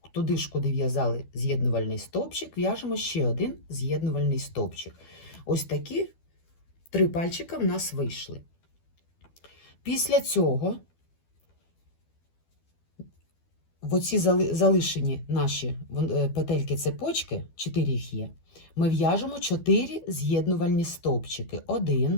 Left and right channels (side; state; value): right; late; 12 ms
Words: туди ж, куди в'язали з'єднувальний стовпчик, в'яжемо ще один з'єднувальний стовпчик. Ось такі 3 пальчика в нас вийшли. Після цього в оці залишені наші петельки-цепочки, 4 їх є, ми в'яжемо 4 з'єднувальні стовпчики. 1,